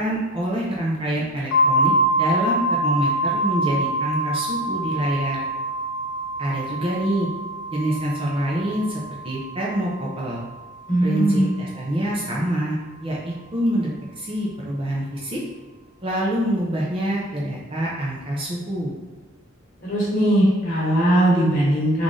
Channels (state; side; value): normal; both; correlation 0.48